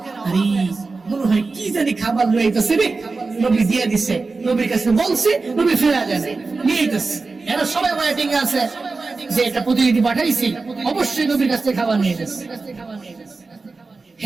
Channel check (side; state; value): left; quieter; 3.9 dB